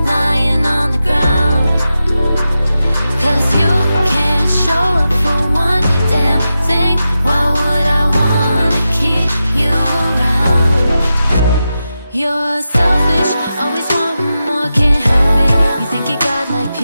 lying on the ground, 'cause you can't show up for one damn thing. Why would I wanna keep you around? You're selfish, always wanting more, can't help it. You think you got like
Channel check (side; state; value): both; inverted; correlation -0.90